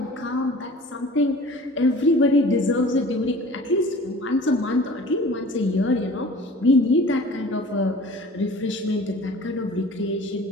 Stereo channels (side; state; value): both; normal; correlation 0.44